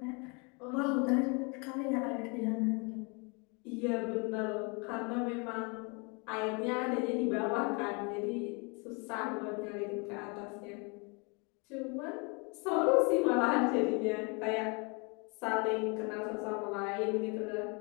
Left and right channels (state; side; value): quieter; right; 32.1 dB